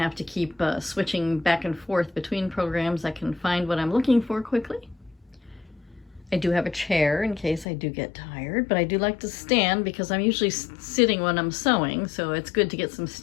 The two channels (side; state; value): right; drops out; at 7.7 s